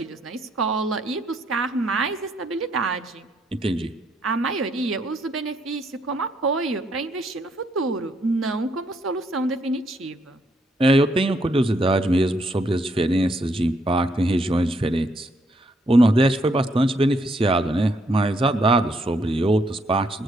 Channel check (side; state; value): both; normal; correlation 0.73